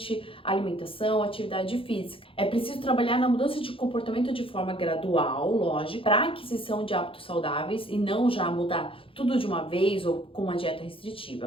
alimentação, atividade física. É preciso trabalhar na mudança de comportamento de forma gradual, lógico, para a aquisição de hábitos saudáveis e não já mudar tudo de uma vez ou com uma dieta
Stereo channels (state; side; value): late; right; 0.26 ms